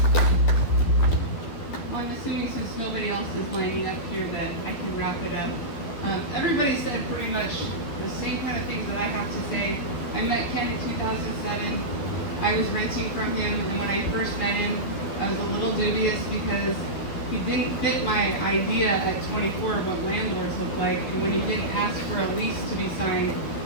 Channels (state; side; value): late; right; 12 ms